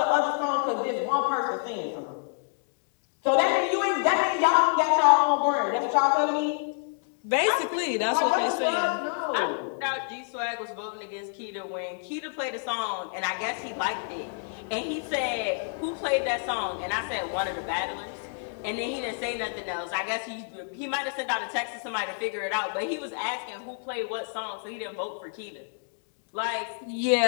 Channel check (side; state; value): right; silent; 59 dB below the other